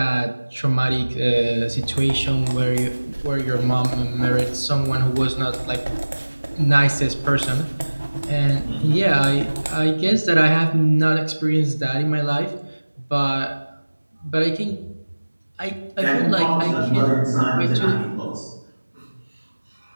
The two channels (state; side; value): inverted; both; correlation -1.00